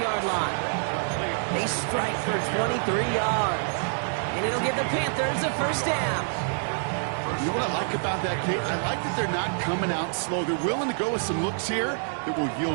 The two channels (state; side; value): silent; left; digital silence